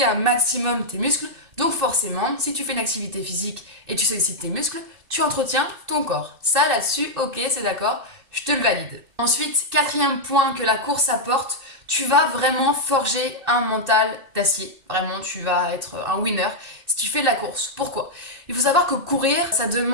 un maximum tes muscles. Donc forcément, si tu fais une activité physique et tu sollicites tes muscles, tu entretiens ton corps. Ça là-dessus, ok, c'est d'accord, je te le valide. Ensuite, 4e point que la course apporte, tu vas vraiment forger un mental d'acier. Vraiment, tu vas être un winner si tu fais de la course. Pourquoi? Il faut savoir que courir, ça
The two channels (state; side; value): late; left; 2.6 ms